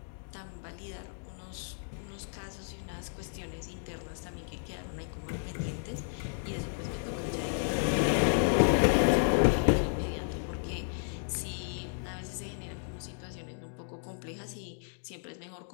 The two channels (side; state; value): right; silent; digital silence